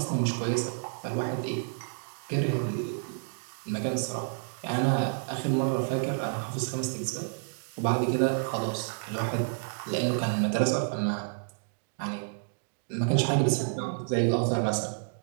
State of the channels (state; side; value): silent; left; digital silence